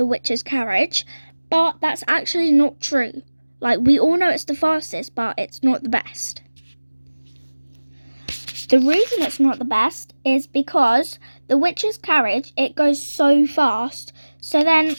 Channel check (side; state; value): both; inverted; correlation -1.00